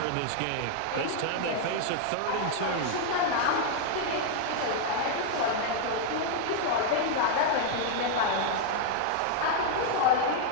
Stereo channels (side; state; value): both; different; correlation 0.00